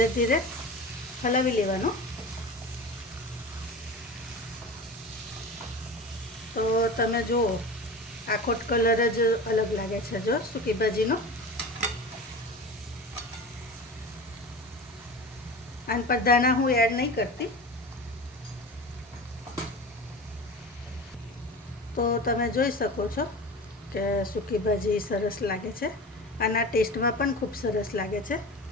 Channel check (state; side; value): normal; both; correlation 0.32